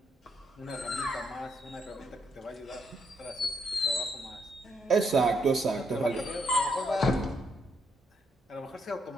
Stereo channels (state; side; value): normal; both; correlation 0.76